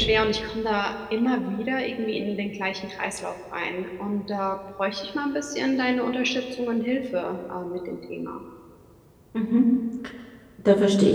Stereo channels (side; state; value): both; identical; correlation 1.00